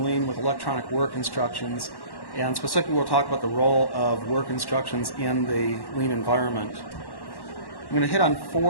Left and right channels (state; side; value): late; right; 1.1 ms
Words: lean with electronic work instructions, and specifically we'll talk about the role of work instructions in the lean environment. I'm going to hit on